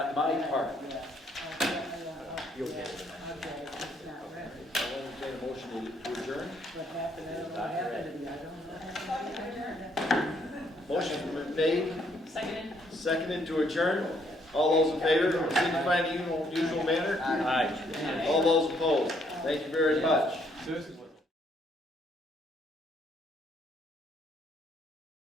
my part. You'll get it. I'll entertain a motion to adjourn. Motion's been made, seconded to adjourn. All those in favor, signify in the usual manner. Aye. All those opposed. Thank you very much.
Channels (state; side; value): normal; both; correlation 0.69